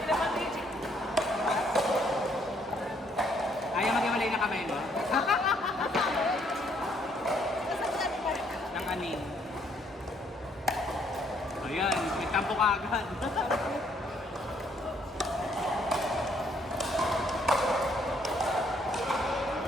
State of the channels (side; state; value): both; normal; correlation 0.68